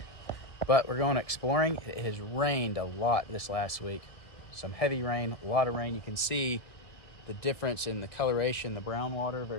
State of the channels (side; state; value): right; late; 1.6 ms